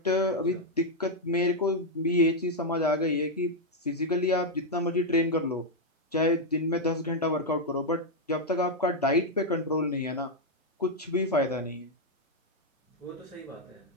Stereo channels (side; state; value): both; normal; correlation 0.00